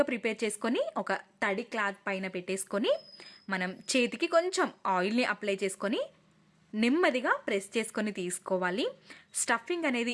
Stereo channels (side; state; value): both; identical; correlation 1.00